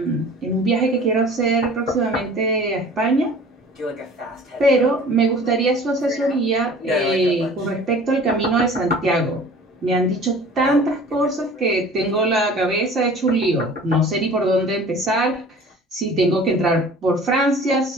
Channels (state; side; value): normal; both; correlation 0.45